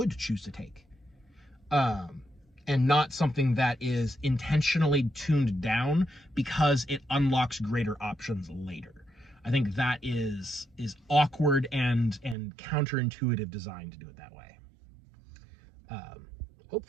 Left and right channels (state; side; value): drops out; left; at 12.4 s